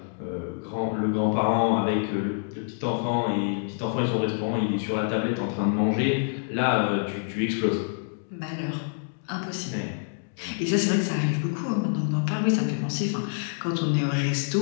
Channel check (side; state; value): right; silent; digital silence